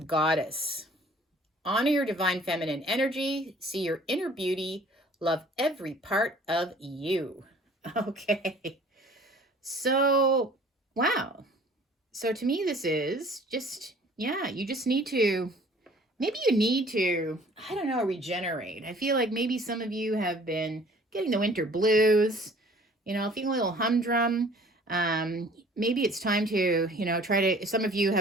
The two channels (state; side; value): normal; both; correlation 0.52